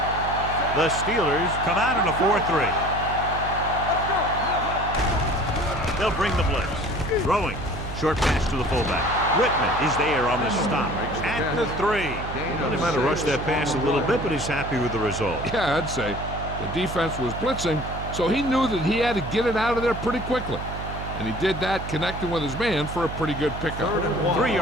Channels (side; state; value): right; noise; hum, 8 dB below the sound